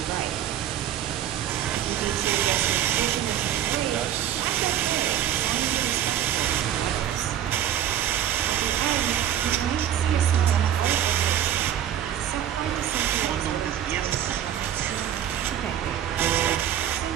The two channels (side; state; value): left; quieter; 10.6 dB